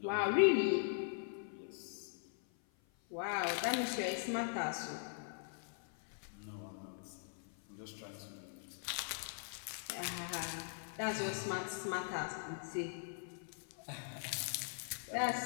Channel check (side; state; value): right; silent; 50 dB below the other